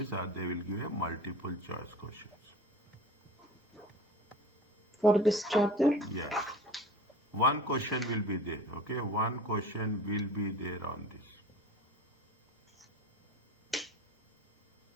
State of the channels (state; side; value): normal; both; correlation 0.38